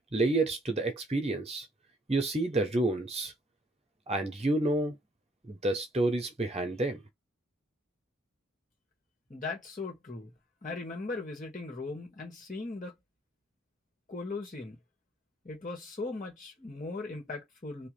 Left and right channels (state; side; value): normal; both; correlation 0.65